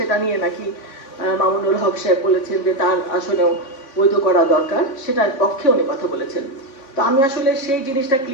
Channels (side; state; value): right; late; 3.7 ms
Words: নিয়ে নাকি মামুনুল হক সাহেব বলেছেন যে তার আসলেও বৈধ করা দরকার, সেটার পক্ষে উনি কথা বলেছেন। তো আমি আসলে সেই জিনিসটা